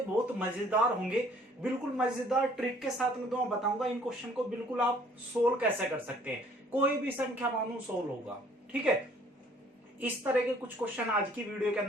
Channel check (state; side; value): normal; both; correlation 0.58